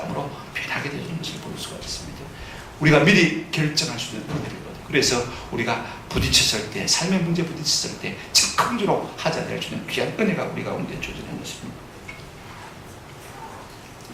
변하게 되는 것을 볼 수가 있습니다. 우리가 미리 결정할 수 있는 은혜거든요. 그래서 우리가 부딪혔을 때, 삶의 문제 부딪혔을 때 즉흥적으로 하자될 수 있는 귀한 은혜가 우리가 가운데 주어지는 것입니다.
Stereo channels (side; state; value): both; identical; correlation 1.00